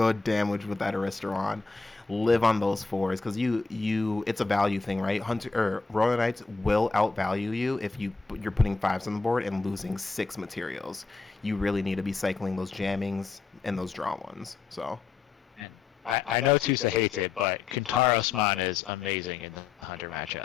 damage with that Aristramon. Live on those 4s because it's a value thing, right? Royal Knights will outvalue you if you're putting 5s on the board and losing 6 materials. You really need to be cycling those jammings and those draw ones. So. I know Tusa hates it, but Kintarosmon is amazing in the Hunter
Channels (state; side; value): quieter; right; 4.5 dB